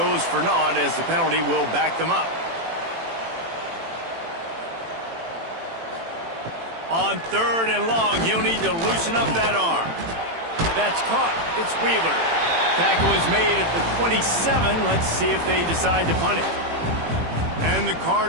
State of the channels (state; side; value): late; left; 18 ms